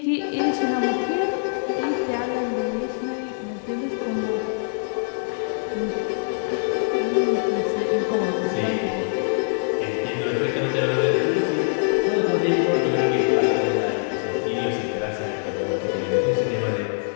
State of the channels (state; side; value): silent; right; digital silence